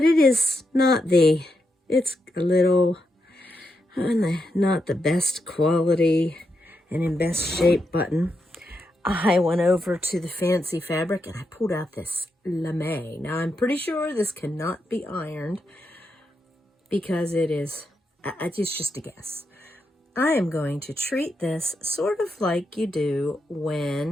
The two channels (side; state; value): both; normal; correlation 0.83